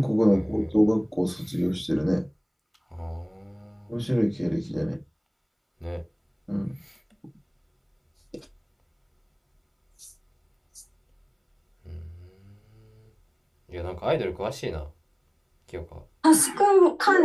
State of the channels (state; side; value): identical; both; correlation 1.00